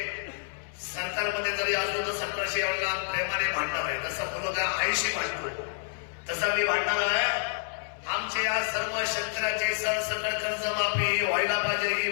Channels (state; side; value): silent; right; 59 dB below the other